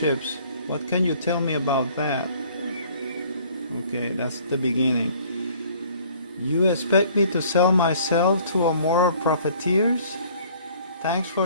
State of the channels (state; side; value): inverted; both; correlation -0.55